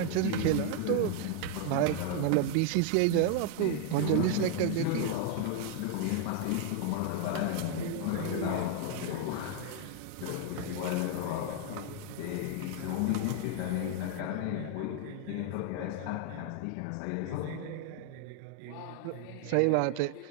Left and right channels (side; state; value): both; different; correlation 0.00